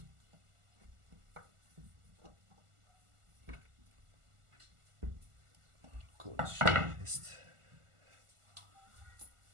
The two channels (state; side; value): late; left; 1.4 ms